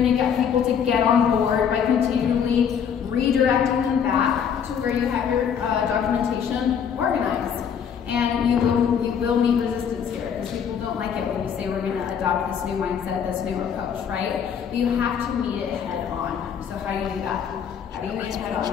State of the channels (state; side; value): quieter; right; 7.7 dB